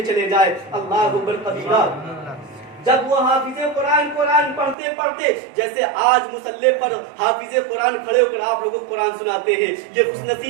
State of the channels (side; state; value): left; drops out; at 4.8 s